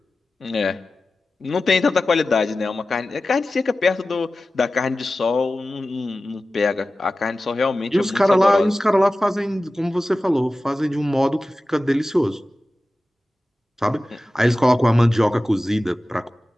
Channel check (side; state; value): both; normal; correlation 0.95